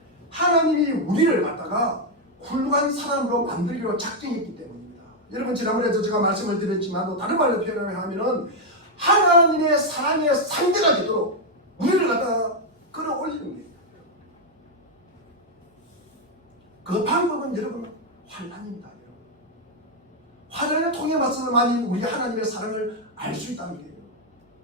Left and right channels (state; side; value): normal; both; correlation 0.01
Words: 하나님이 우리를 갖다가 훌륭한 사람으로 만들기로 작정했기 때문입니다. 여러분, 지난번에도 제가 말씀을 드렸지만 다른 말로 표현하면은 하나님의 사랑의 상대가 되도록 우리를 갖다가 끌어올리는 거예요. 그 방법은 여러분 환난입니다. 여러분. 환난을 통해 맞서만이 우리 하나님의 사랑을 알 수 있다는 거예요.